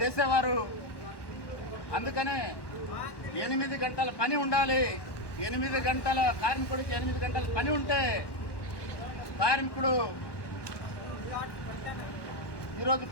అందుకనే 8 గంటల పని ఉండాలి. 8 గంటల కార్మికుడికి 8 గంటల పని ఉంటే కార్మికుడు ఈరోజు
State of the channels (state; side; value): late; right; 1.1 ms